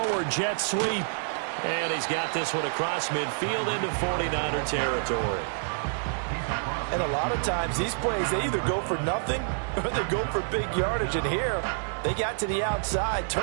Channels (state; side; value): silent; left; 59 dB below the other